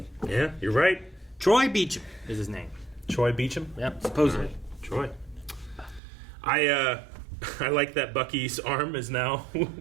Yeah, you're right. Troy Beecham is his name. Troy Beecham? Yep, supposedly. Troy. I like that Bucky's arm is now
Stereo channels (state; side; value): drops out; left; at 6.0 s